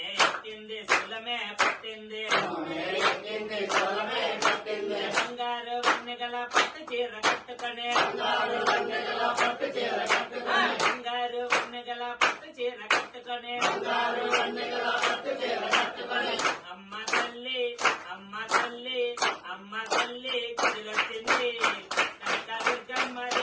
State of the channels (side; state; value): both; identical; correlation 1.00